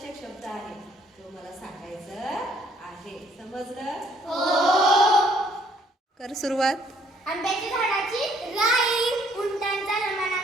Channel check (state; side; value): normal; both; correlation 0.64